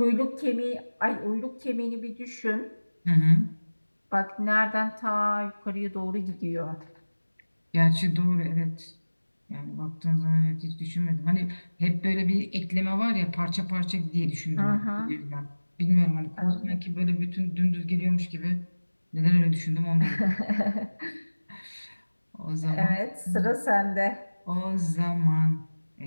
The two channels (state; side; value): inverted; both; correlation -1.00